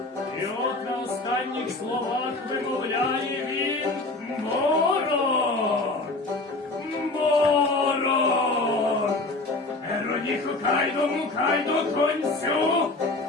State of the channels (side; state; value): right; quieter; 3.0 dB